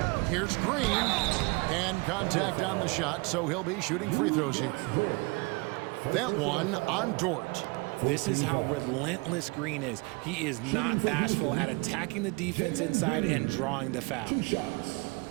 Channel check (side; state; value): left; quieter; 28.3 dB